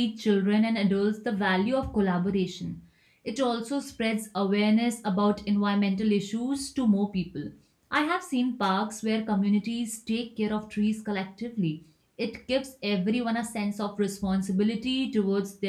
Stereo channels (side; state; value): both; identical; correlation 1.00